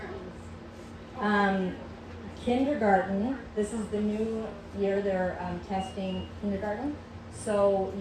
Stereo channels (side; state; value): both; identical; correlation 1.00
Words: Kindergarten, this is the new year they're testing kindergarten. So